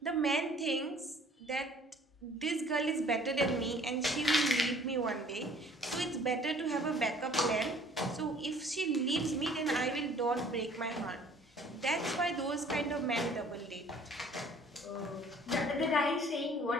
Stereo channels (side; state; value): both; normal; correlation 0.54